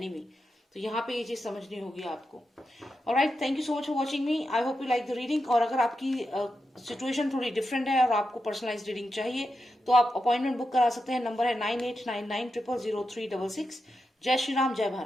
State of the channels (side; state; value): both; normal; correlation 0.88